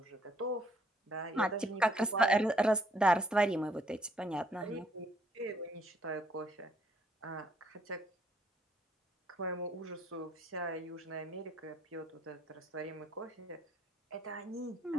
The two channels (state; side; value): normal; both; correlation 0.67